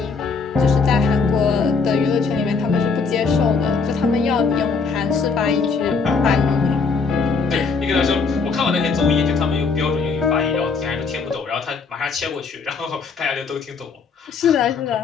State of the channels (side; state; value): right; quieter; 4.9 dB